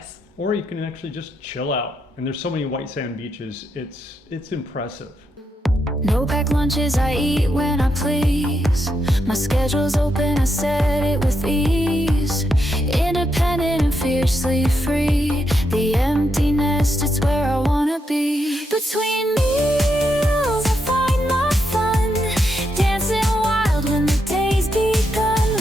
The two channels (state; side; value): normal; both; correlation 0.82